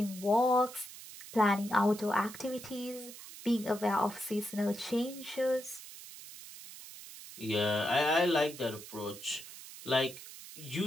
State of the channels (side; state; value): right; noise; hiss, 14 dB below the sound